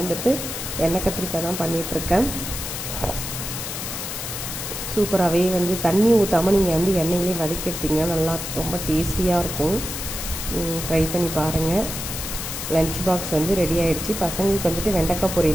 வந்துட்டு எண்ணெய் கத்திரிக்காய் தான் பண்ணிகிட்ருக்கேன். சூப்பராகவே வந்து தண்ணி ஊற்றாமல் நீங்கள் வந்து எண்ணெயிலே வதக்கி எடுத்திங்கன்னா நல்லா ரொம்ப டேஸ்டியாக இருக்கும். ட்ரை பண்ணி பாருங்கள். லன்ச் பாக்ஸ் வந்து ரெடி ஆகிடுச்சு. பசங்களுக்கு வந்துட்டு வெண்டைக்காய்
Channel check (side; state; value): left; noise; hiss, 6 dB below the sound